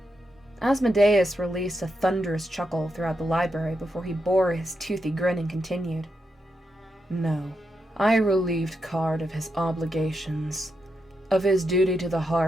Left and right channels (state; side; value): normal; both; correlation 0.84